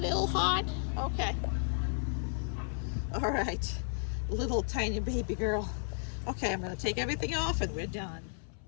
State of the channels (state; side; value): silent; right; 56 dB below the other